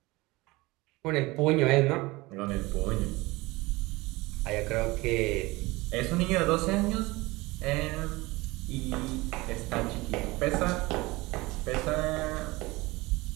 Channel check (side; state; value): left; quieter; 21.7 dB